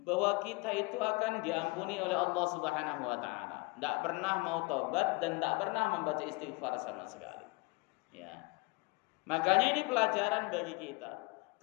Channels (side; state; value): right; quieter; 26.1 dB